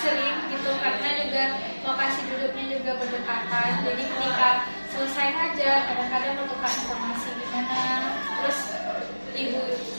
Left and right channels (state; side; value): inverted; both; correlation -1.00